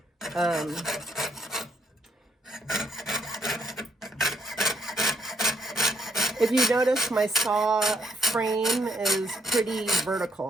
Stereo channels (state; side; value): normal; both; correlation 0.72